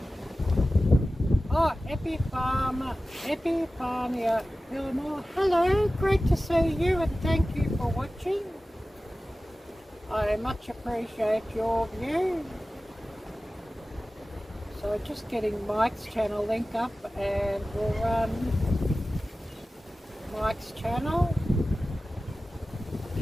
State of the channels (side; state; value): both; normal; correlation 0.96